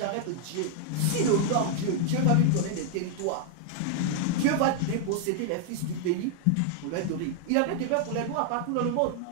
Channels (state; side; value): different; both; correlation 0.00